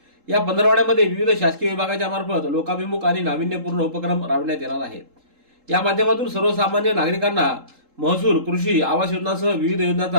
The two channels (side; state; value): left; late; 3.7 ms